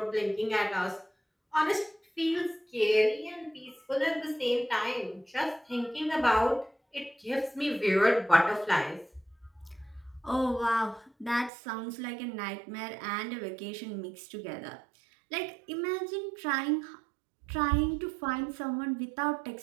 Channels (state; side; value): drops out; left; at 11.5 s